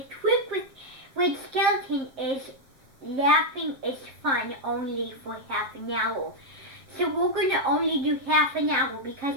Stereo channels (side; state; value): left; late; 7.6 ms